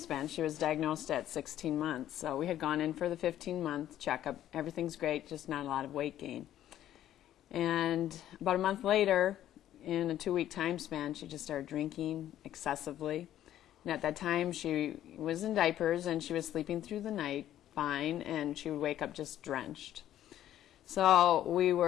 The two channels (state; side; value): quieter; right; 12.1 dB